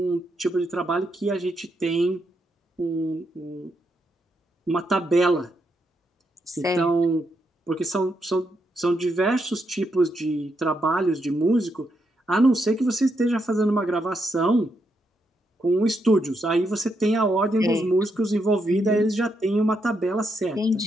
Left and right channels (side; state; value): both; normal; correlation 0.80